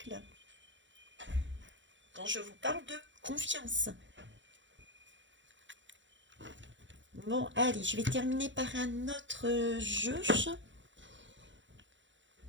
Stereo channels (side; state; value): left; late; 0.54 ms